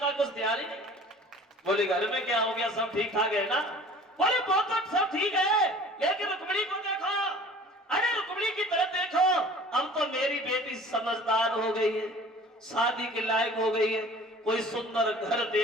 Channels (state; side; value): normal; both; correlation 0.46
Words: का कुछ ध्यान ही नहीं। बोले घर में क्या हो गया, सब ठीक ठाक है ना? बोले बहुत सब ठीक है, लेकिन रुक्मिणी को देखो, अरे रुक्मिणी की तरफ देखो, अब तो मेरी बेटी समझदार हो गई है, शादी के लायक हो गई है। कोई सुंदर घर